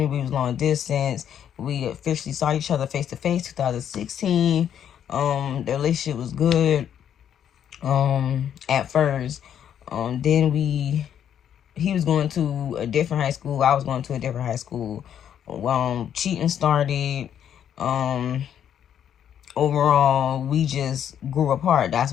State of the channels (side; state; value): right; quieter; 9.4 dB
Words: We was long distance. We officially saw each other face to face 2016. The relationship was good at first. Then he was going to a different high school. I was going to a different high school. Cheating started. Overall, we just grew apart. That's